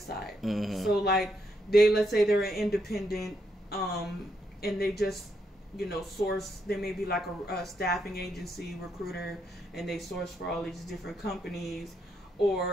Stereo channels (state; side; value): normal; both; correlation 0.78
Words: side. Mm-hmm. So like let's say they're an independent, and they just, source, they may be like a staffing agency recruiter, and they source for all these different companies,